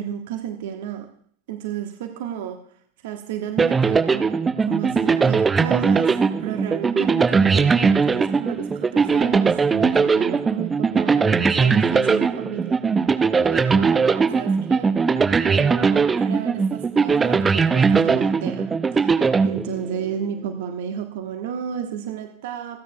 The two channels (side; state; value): left; quieter; 5.0 dB